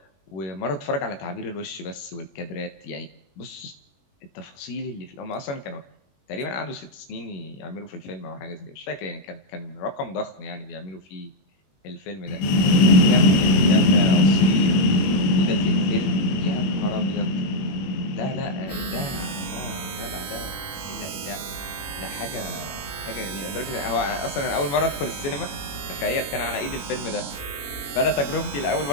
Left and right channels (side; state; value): right; late; 21 ms